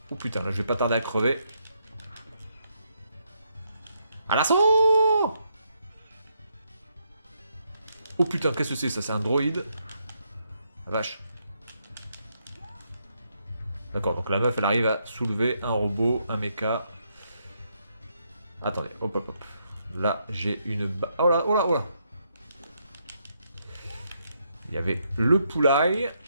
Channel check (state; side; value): inverted; both; correlation -0.77